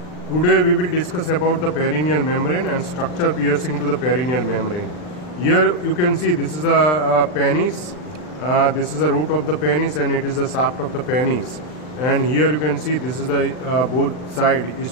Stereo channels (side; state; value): right; late; 39 ms